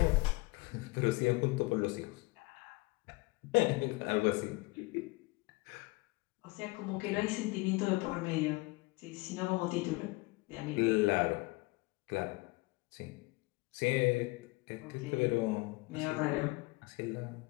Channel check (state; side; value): quieter; right; 24.2 dB